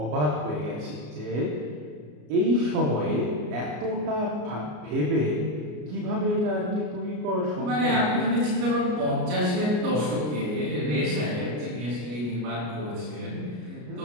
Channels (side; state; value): left; late; 33 ms